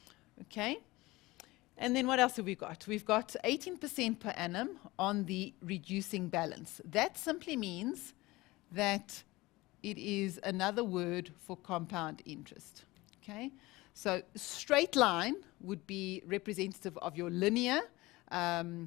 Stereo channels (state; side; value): quieter; right; 20.5 dB